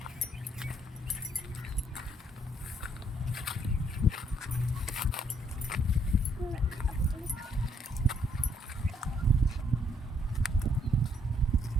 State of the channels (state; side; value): normal; both; correlation 0.69